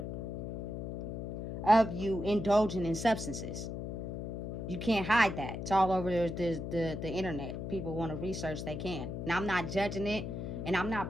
of you indulging in substances. You can't hide that. It's all over the internet. People want to research, they can. Now, I'm not judging it, and I'm not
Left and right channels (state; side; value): noise; left; hum, 5 dB below the sound